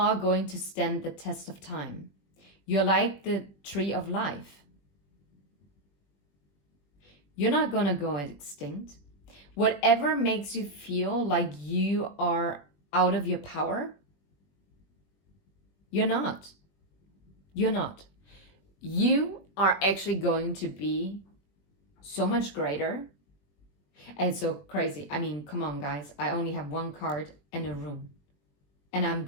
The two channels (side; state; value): right; late; 21 ms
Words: going to stand the test of time. You're like the tree of life. You're not going to go extinct. Whatever makes you feel like you are out of your power, you're not. You're not. You are actually going to be so much greater and so crazy. I mean, come on, guys. I only have one card and a rune. And I'm